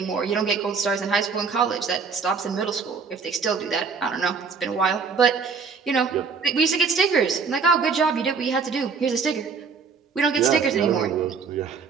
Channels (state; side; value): quieter; left; 5.4 dB